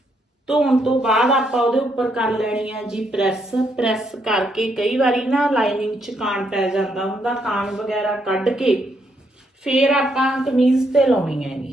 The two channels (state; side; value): normal; both; correlation 0.75